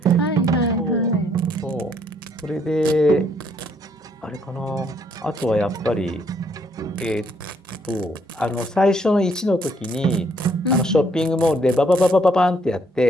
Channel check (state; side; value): normal; both; correlation 0.69